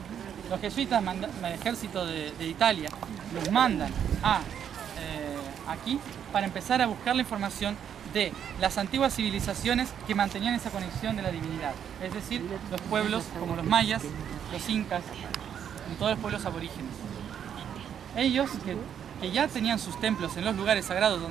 Los jesuitas, el ejército de Italia, los mandan aquí para empezar a buscar la información de las antiguas civilizaciones que mantenían esa conexión de la divinidad. Es decir, los pueblos como los mayas, los incas y todos los pueblos aborígenes. Ellos, que ya tenían sus templos en los lugares sagrados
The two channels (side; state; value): left; quieter; 8.8 dB